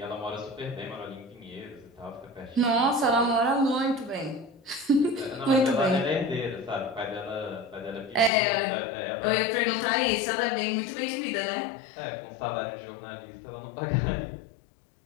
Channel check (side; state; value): right; drops out; at 8.3 s